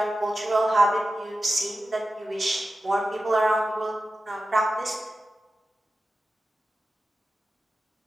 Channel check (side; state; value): both; normal; correlation 0.93